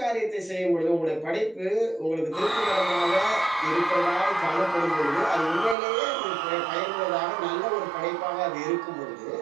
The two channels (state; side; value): drops out; left; at 5.8 s